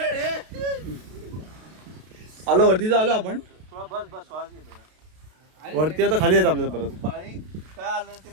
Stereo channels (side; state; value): left; late; 32 ms